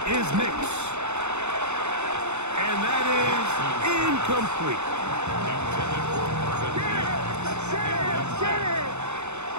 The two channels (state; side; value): late; left; 0.82 ms